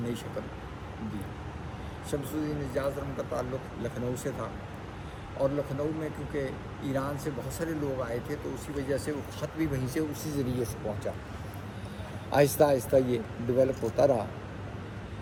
نئی شکل دی. شمس الدین اعجاز ارقم کا تعلق لکھنؤ سے تھا، اور لکھنؤ میں کیونکہ ایران سے بہت سارے لوگ آئے تھے تو اسی وجہ سے وہ خط بھی وہیں سے اسی ذریعے سے پہنچا. آہستہ آہستہ یہ ڈیولپ ہوتا رہا.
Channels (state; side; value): identical; both; correlation 1.00